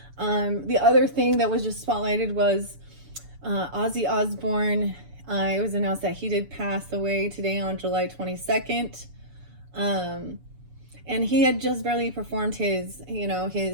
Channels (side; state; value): left; late; 7.0 ms